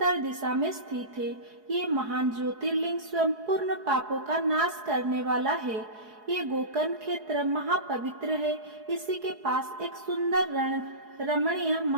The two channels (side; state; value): left; late; 4.7 ms